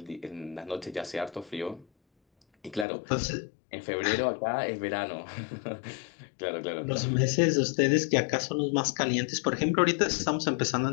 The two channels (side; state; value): right; drops out; at 2.9 s